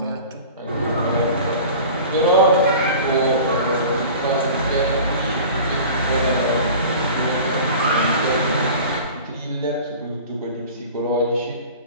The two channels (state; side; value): inverted; both; correlation -0.40